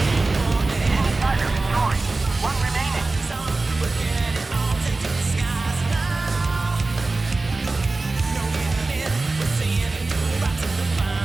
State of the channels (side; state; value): left; quieter; 3.4 dB